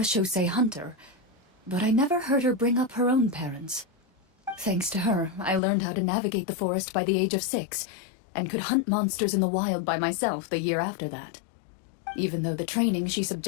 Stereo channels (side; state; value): right; drops out; at 5.6 s